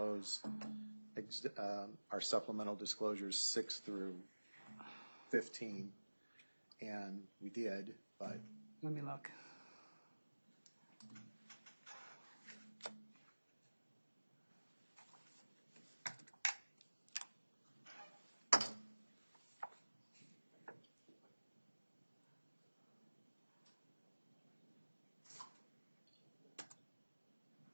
our supplemental disclosures 6 through 15, and we did, but Let me look.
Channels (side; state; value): both; inverted; correlation -1.00